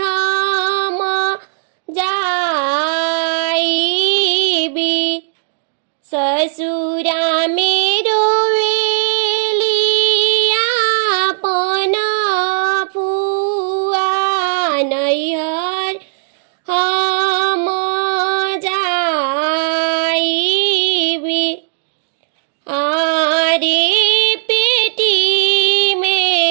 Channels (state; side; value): silent; left; 69 dB below the other